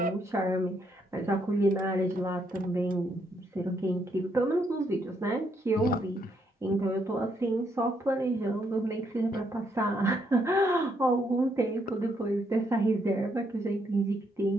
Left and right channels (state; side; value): normal; both; correlation 0.74